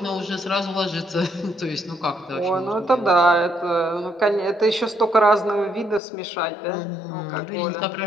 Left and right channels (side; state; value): right; drops out; at 6.0 s